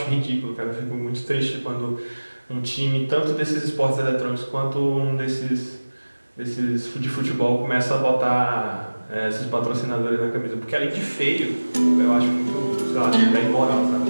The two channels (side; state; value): both; inverted; correlation -1.00